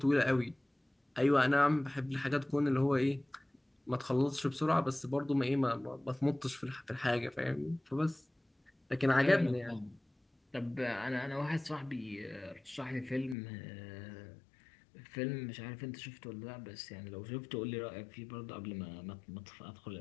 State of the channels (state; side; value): drops out; right; at 13.4 s